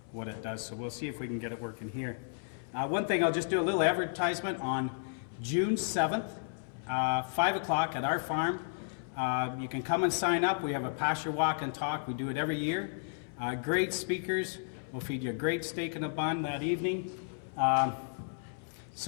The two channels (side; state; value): right; silent; 56 dB below the other